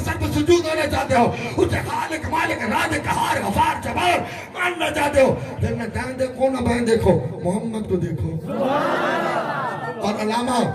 سر پر سجود ہونا چاہتے ہو، اس کے خالق مالک رازق قہار غفار جبار ماننا چاہتے ہو، پھر نہ دائیں دیکھو نہ بائیں دیکھو، محمد کو دیکھو. اور علامہ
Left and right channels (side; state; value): both; identical; correlation 1.00